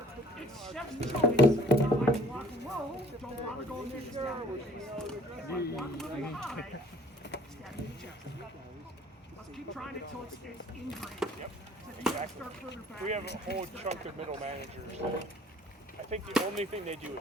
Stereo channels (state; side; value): normal; both; correlation 0.54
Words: it's chef's choice. If I block low, don't want to go in there and stab me. If I block really high, stab me in the chest. Let's keep trying it till it's ingrained. Yep. So if you gotta start further back. We have a whole chunk of middle managers that I think the only thing they do